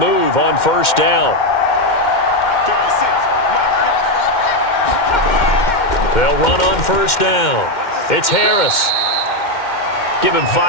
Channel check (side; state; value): right; late; 2.1 ms